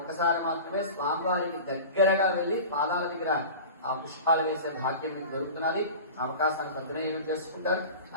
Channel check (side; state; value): both; inverted; correlation -0.35